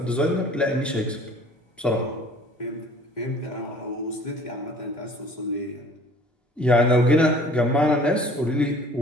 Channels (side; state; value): both; normal; correlation 0.50